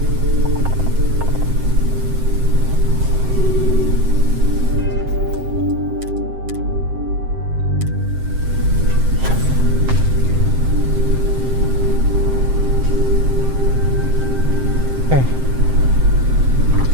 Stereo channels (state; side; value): late; left; 7.7 ms